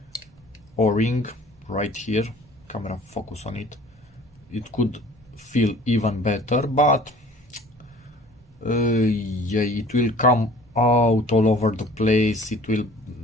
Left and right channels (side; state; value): right; noise; rumble, 29 dB below the sound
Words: O-ring right here, camera focus on it, it could feel even better, but yeah, it will come out all over the place. It will